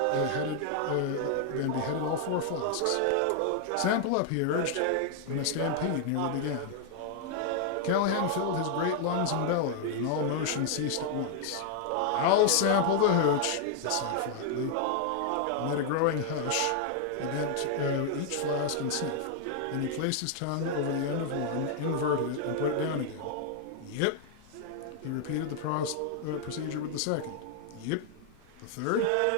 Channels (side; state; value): both; different; correlation 0.00